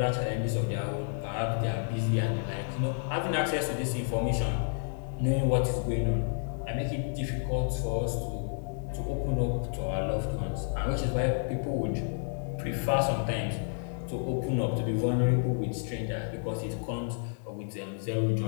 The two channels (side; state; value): right; silent; 57 dB below the other